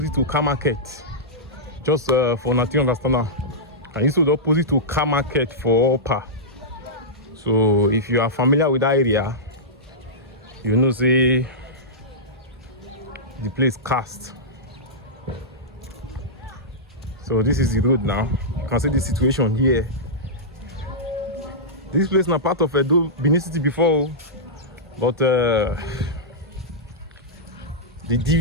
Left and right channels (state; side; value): normal; both; correlation -0.13